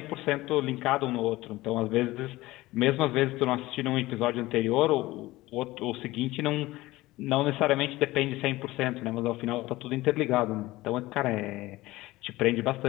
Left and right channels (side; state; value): right; quieter; 18.5 dB